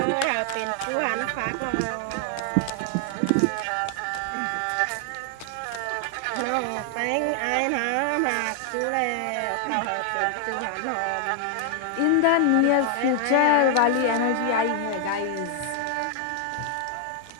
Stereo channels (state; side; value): different; both; correlation 0.00